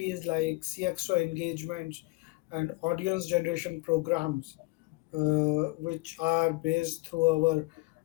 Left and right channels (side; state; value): right; quieter; 24.4 dB